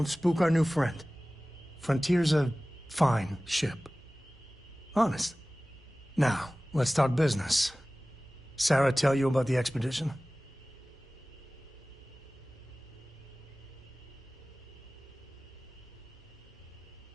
spook our new friend. Frontier's a fine ship. Honest. Now, let's talk business. Sarah tell you about the expedition?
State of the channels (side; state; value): both; normal; correlation 0.98